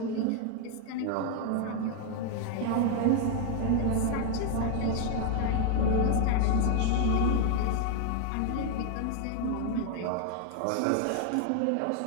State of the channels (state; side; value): different; both; correlation 0.00